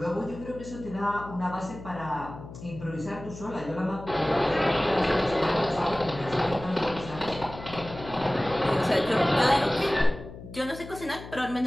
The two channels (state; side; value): noise; left; hum, 14 dB below the sound